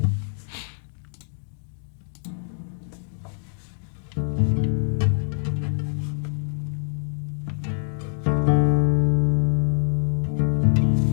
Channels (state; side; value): silent; right; digital silence